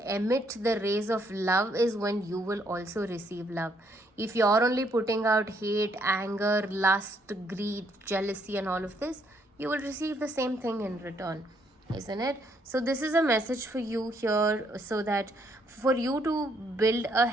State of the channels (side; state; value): both; normal; correlation 0.70